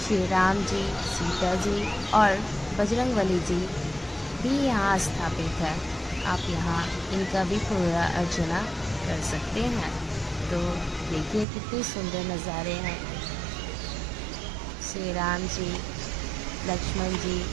राम जी, सीता जी और बजरंगबली जी भी यहाँ स्थापित है। आप यहाँ इनका भी पूजा अर्चना कर सकते हैं। तो देखिए कितने सुंदर नज़ारे हैं। श्री राम जी, लक्ष्मण जी,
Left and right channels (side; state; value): left; drops out; at 11.5 s